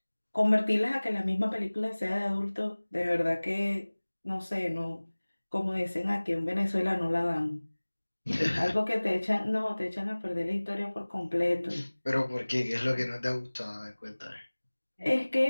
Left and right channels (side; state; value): both; inverted; correlation -1.00